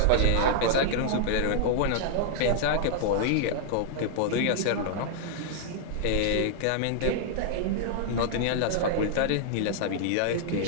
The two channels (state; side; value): different; both; correlation -0.01